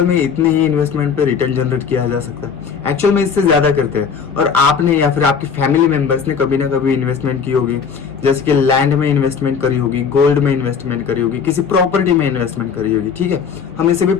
में इतने ही इन्वेस्टमेंट पे रिटर्न जनरेट किया जा सकता है? एक्चुअल में इससे ज्यादा करते हैं। और आपने या फिर आपकी फैमिली मेंबर्स ने कभी ना कभी इन्वेस्टमेंट की होगी, जैसे कि लैंड में इन्वेस्टमेंट करी होगी, गोल्ड में इन्वेस्टमेंट करी होगी, किसी प्रॉपर्टी में इन्वेस्टमेंट करी होगी, ठीक है। हम इसे भी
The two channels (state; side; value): quieter; right; 6.4 dB